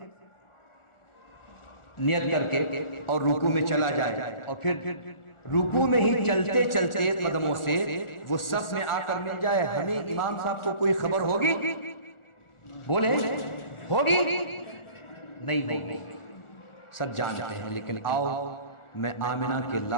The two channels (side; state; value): right; late; 1.4 ms